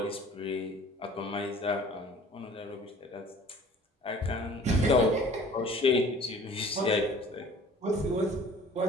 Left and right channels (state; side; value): normal; both; correlation 0.49